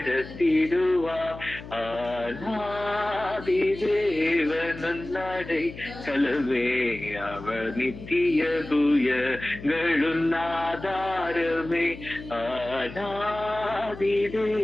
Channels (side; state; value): left; noise; hum, 14 dB below the sound